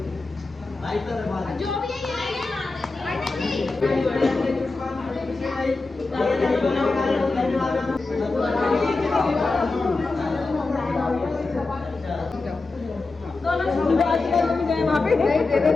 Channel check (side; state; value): right; quieter; 3.6 dB